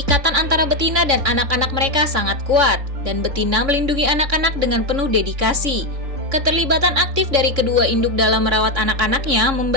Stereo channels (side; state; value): left; late; 3.6 ms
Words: antara betina dan anak-anak mereka sangat kuat, dan betina melindungi anak-anak dengan penuh dedikasi. Keterlibatan aktif dari kedua induk dalam merawat anak-anaknya